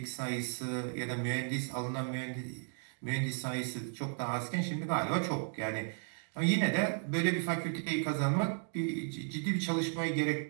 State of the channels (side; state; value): left; silent; 55 dB below the other